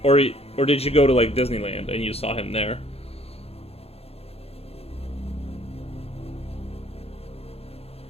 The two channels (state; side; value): late; right; 0.29 ms